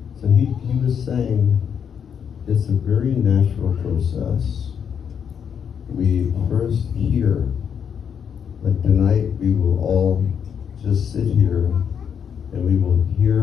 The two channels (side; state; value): right; quieter; 7.7 dB